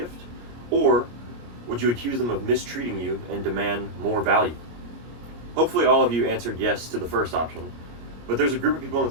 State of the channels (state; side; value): late; left; 25 ms